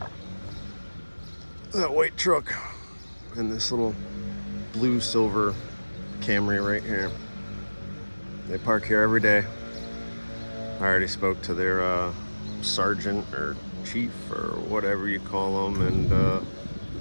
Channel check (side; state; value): both; inverted; correlation -1.00